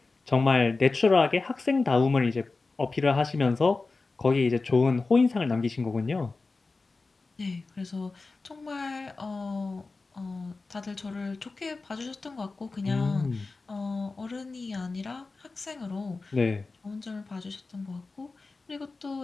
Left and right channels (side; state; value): right; quieter; 3.8 dB